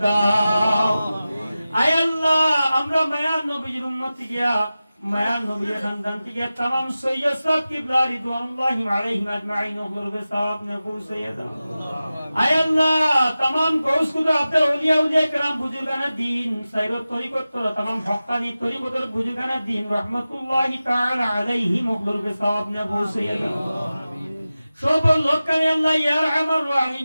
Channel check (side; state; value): both; inverted; correlation -0.95